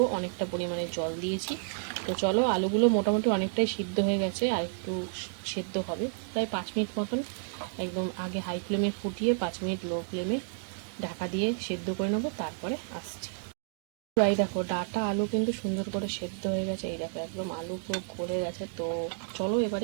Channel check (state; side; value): silent; left; digital silence